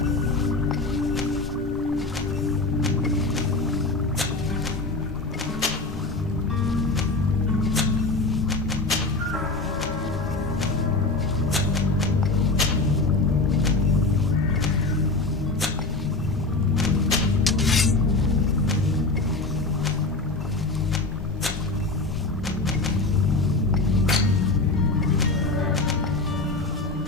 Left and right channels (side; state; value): right; quieter; 3.3 dB